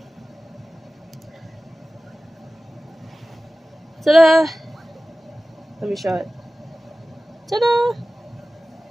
Ta-da! Let me show it. Ta-da!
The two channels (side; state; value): both; normal; correlation 0.97